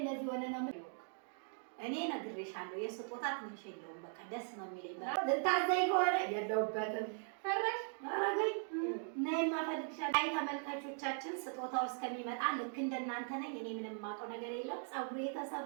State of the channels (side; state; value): left; silent; 51 dB below the other